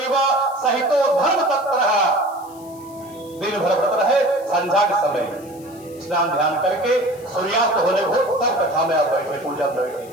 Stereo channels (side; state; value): left; noise; hiss, 24 dB below the sound